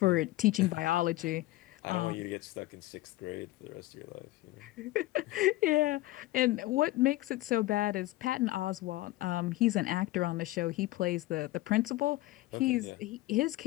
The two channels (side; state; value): right; quieter; 17.7 dB